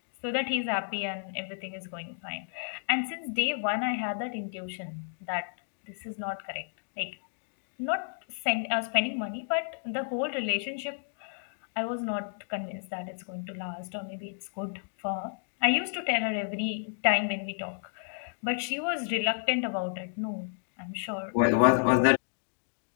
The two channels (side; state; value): right; silent; digital silence